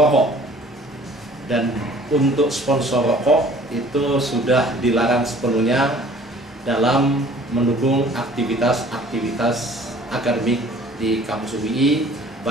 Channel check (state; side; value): normal; both; correlation 0.51